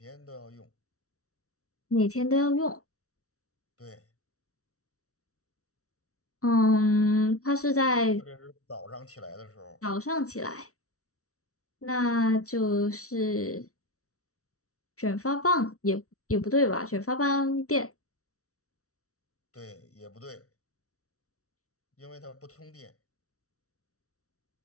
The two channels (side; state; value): right; late; 0.64 ms